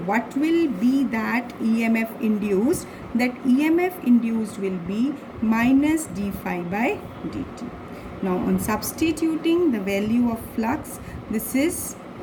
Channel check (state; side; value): identical; both; correlation 1.00